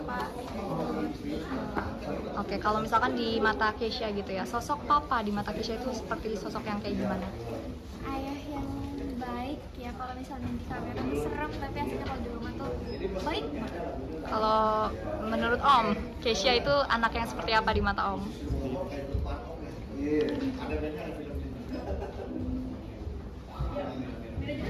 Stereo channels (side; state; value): both; identical; correlation 1.00